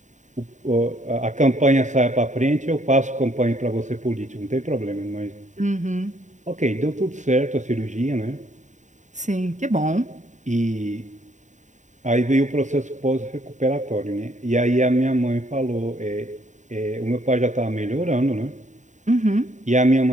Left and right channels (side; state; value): left; late; 0.35 ms